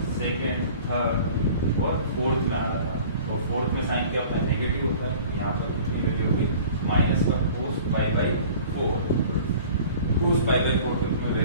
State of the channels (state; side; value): inverted; both; correlation -0.46